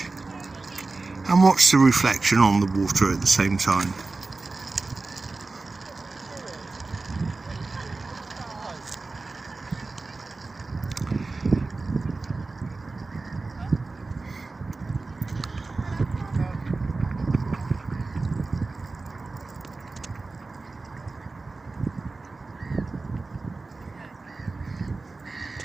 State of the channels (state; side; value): quieter; left; 3.6 dB